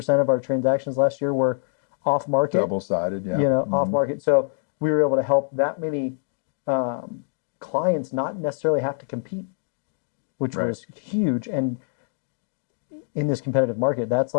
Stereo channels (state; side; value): silent; right; 62 dB below the other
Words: of our transactions last year were off-market. Double-sided, off-market. So we were able to help that many clients not necessarily have to compete, which was huge. And in this competitive market, that's